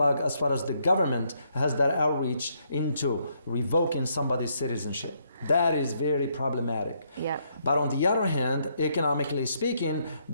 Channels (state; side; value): inverted; both; correlation -0.74